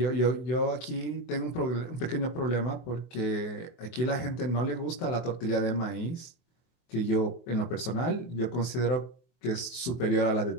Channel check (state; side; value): late; right; 24 ms